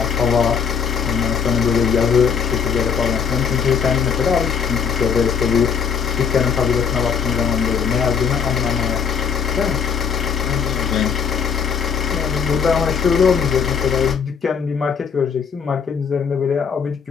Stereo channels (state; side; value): quieter; right; 6.7 dB